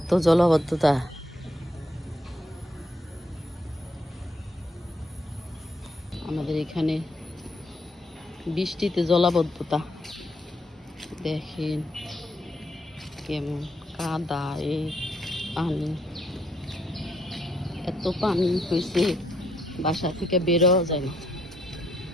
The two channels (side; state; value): both; normal; correlation 0.73